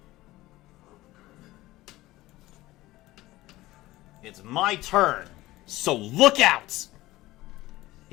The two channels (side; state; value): right; quieter; 17.7 dB